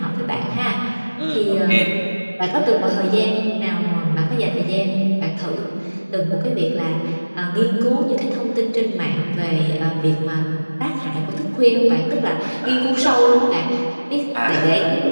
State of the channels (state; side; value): inverted; both; correlation -1.00